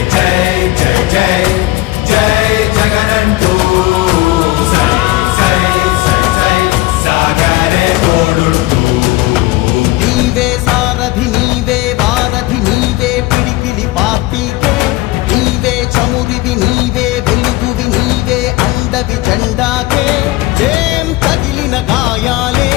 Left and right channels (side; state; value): right; quieter; 18.9 dB